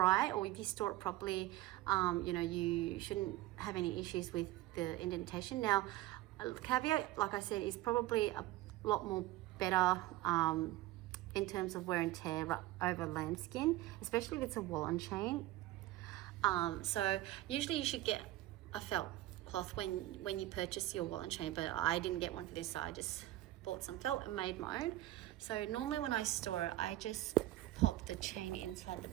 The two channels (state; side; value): quieter; left; 16.3 dB